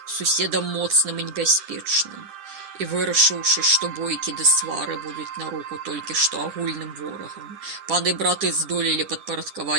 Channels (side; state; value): left; late; 10 ms